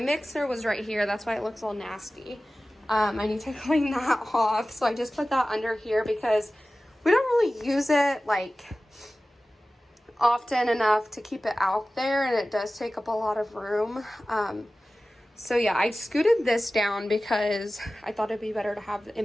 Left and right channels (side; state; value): both; normal; correlation 0.96